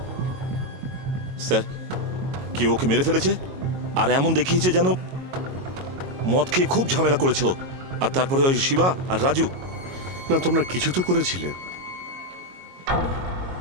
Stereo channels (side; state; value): left; late; 22 ms